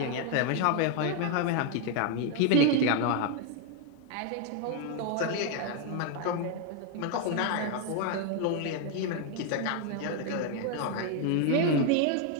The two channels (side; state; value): both; different; correlation 0.01